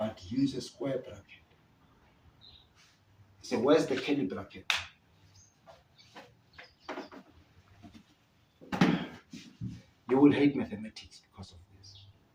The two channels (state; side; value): identical; both; correlation 1.00